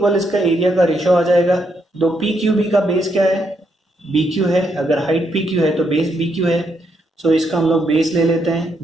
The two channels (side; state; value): both; normal; correlation 0.77